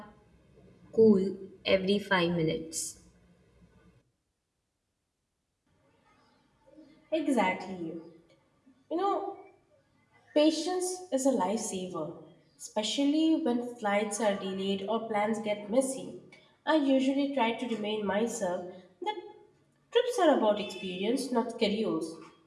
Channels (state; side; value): identical; both; correlation 1.00